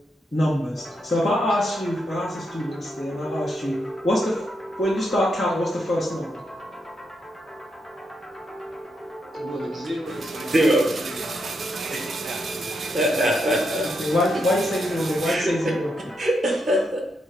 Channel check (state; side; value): normal; both; correlation 0.81